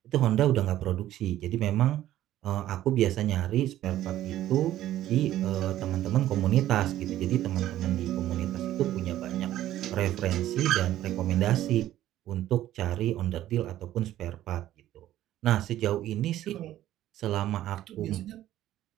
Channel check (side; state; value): left; quieter; 13.4 dB